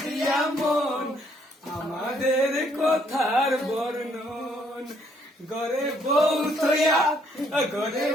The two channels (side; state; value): both; normal; correlation 0.68